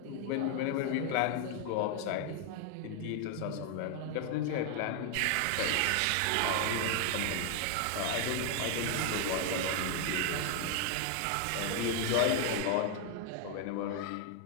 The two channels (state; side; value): different; both; correlation 0.00